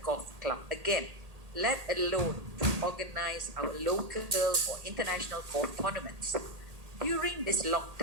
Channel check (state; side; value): late; left; 1.8 ms